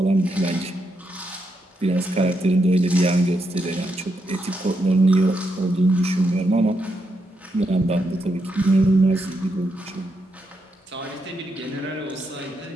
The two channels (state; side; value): normal; both; correlation 0.81